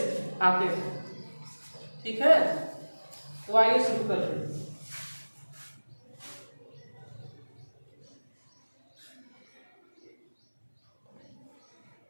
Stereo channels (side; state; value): both; inverted; correlation -1.00